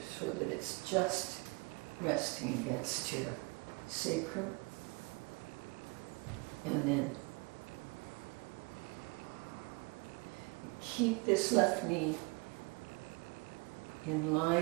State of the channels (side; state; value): left; quieter; 28.8 dB